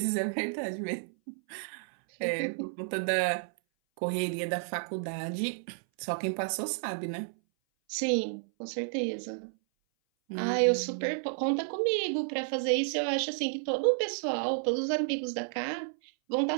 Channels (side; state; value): left; silent; 57 dB below the other